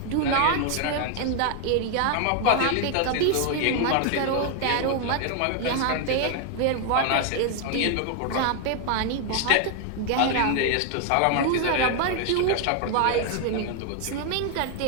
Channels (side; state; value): both; different; correlation 0.00